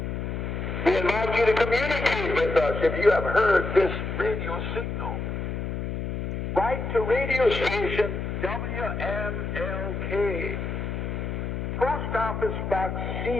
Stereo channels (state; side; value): noise; left; hum, 4 dB below the sound